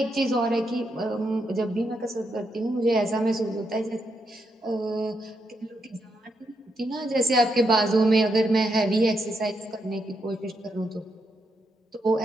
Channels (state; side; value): normal; both; correlation 0.81